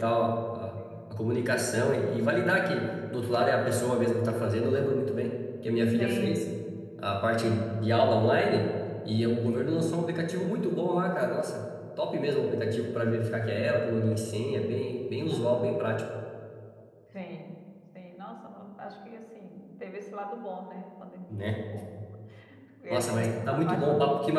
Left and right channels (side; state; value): both; identical; correlation 1.00